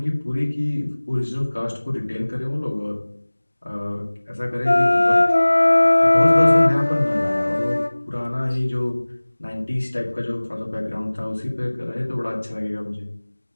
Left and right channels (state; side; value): inverted; both; correlation -1.00